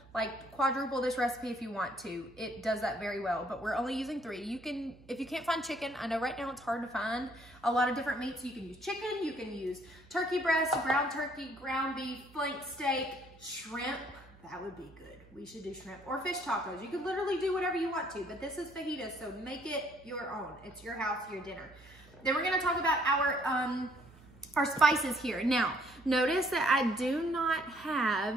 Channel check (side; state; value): right; noise; hum, 25 dB below the sound